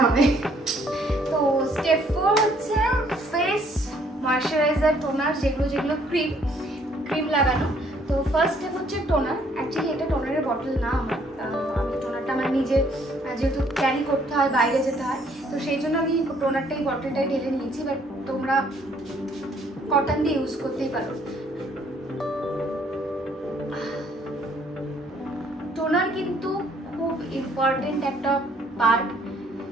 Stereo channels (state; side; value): normal; both; correlation 0.64